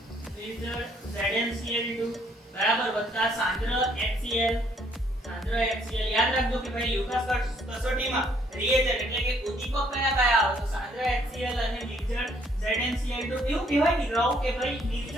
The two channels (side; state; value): both; normal; correlation 0.66